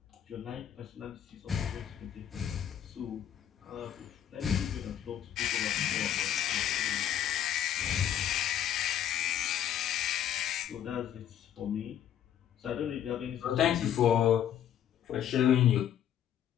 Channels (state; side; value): quieter; right; 10.3 dB